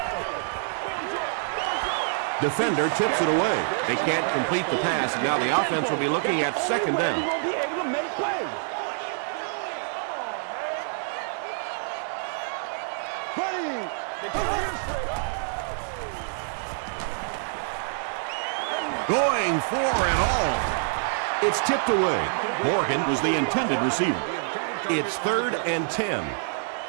Defender tips it away. They can't complete the pass, and now the offense will be looking at second down. Going for it all. It's tipped away. Morgan was the intended receiver. It's 3rd and 10.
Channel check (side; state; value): left; silent; digital silence